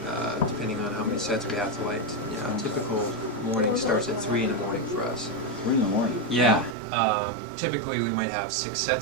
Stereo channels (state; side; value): drops out; left; at 6.8 s